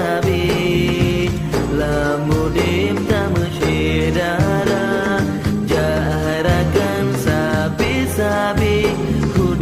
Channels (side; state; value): both; identical; correlation 1.00